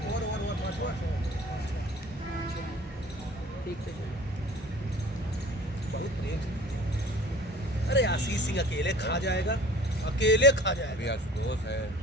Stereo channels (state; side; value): normal; both; correlation 0.47